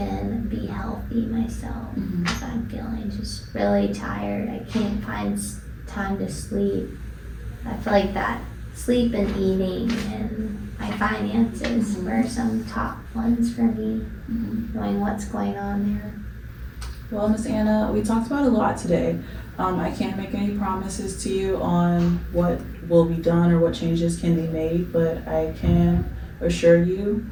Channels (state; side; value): identical; both; correlation 1.00